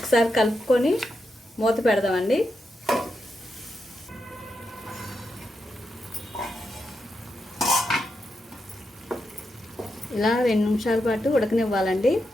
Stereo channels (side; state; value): both; normal; correlation 0.85